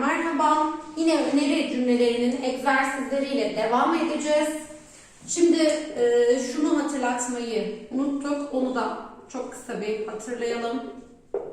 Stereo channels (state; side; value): identical; both; correlation 1.00